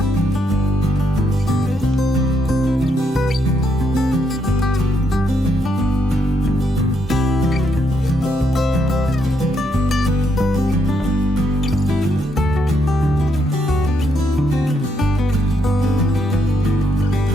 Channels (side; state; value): both; normal; correlation 0.76